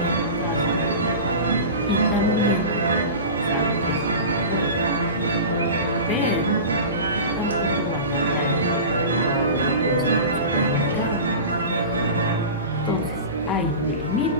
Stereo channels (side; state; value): both; inverted; correlation -0.32